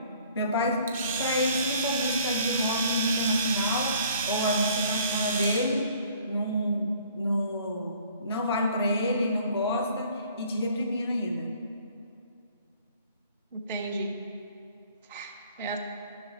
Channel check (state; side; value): inverted; both; correlation -0.56